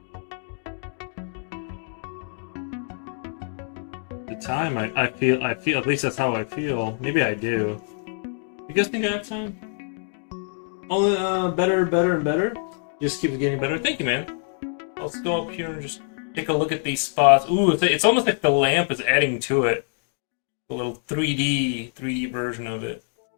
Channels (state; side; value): silent; right; 61 dB below the other